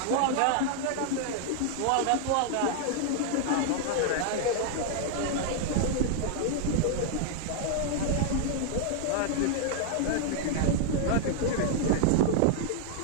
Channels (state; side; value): different; both; correlation 0.00